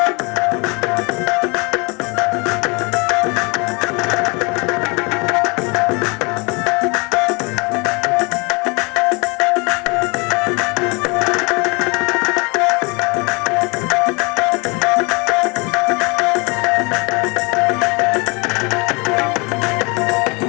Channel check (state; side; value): quieter; right; 29.3 dB